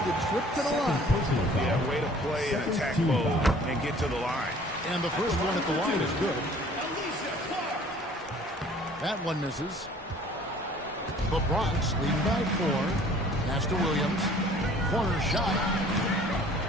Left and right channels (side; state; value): both; normal; correlation 0.52